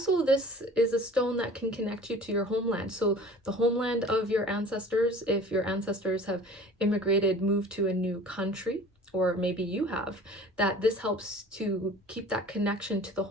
this is a stone that can connect you to your homeland. So the homeland of your ancestors, if your ancestors have immigrated, moved to a new country, or maybe you have, that this helps to keep that connection to the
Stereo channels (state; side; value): normal; both; correlation 0.45